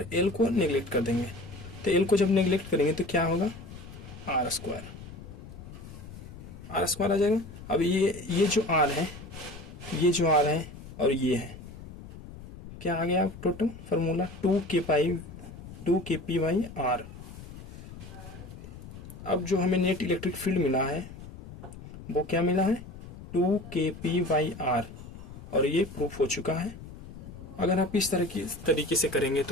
एल को निगलेक्ट कर देंगे, तो एल को जब निगलेक्ट करेंगे तो क्या होगा, आर स्क्वायर आ जाएगा। अब ये जो आर है, ये जो आर है और ये है, क्या आ गया टोटल फार्मूला 2kpy/r। अब जो हमें नेट इलेक्ट्रिक फील्ड मिला है वो क्या मिला है, 2kpy/r, और ये प्रूफ हो चुका है। अगर आप इस तरीके से करेंगे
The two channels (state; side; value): noise; left; rumble, 14 dB below the sound